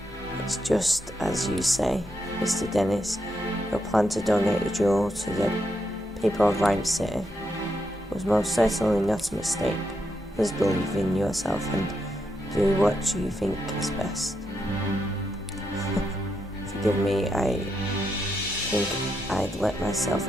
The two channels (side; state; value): both; normal; correlation 0.82